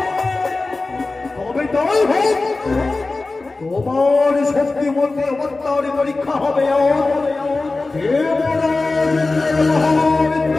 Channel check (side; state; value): right; quieter; 3.4 dB